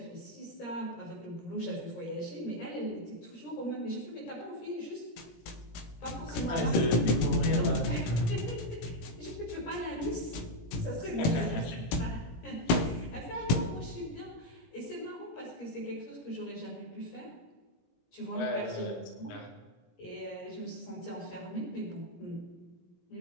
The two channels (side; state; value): right; late; 17 ms